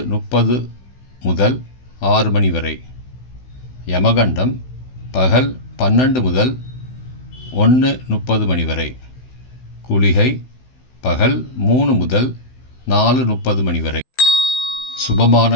முதல் 6 மணி வரை. யமகண்டம் பகல் 12 முதல் 1:30 மணி வரை. குளிகை பகல் 3 முதல் 4:30 மணி வரை. சுபமான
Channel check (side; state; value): right; late; 16 ms